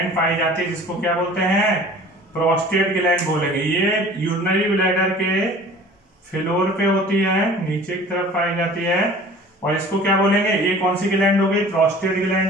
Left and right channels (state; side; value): normal; both; correlation 0.45